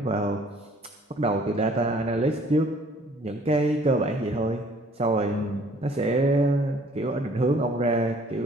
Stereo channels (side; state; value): both; normal; correlation 0.57